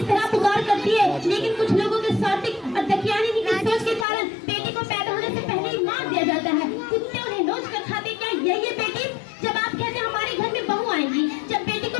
तरह पुकार करती है, लेकिन कुछ लोगों के स्वार्थिक और दकियाने की सोच के कारण बेटी को पैदा होने से पहले ही मार दिया जाता है। कुत्ते उन्हें नोच कर खाते। क्या यही है बेटी? जब आप कहते हैं हमारे घर में बहू आएंगी, जब बेटी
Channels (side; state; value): right; drops out; at 4.0 s